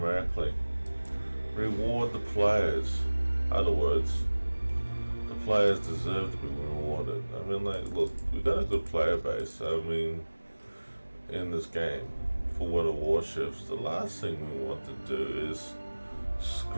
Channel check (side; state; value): both; inverted; correlation -1.00